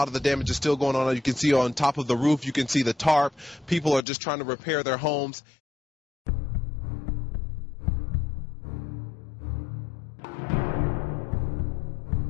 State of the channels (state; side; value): drops out; right; at 4.0 s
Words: of the damage is still going on. You can see on top of the roof, you can see the tarp. People are just trying to repair their homes.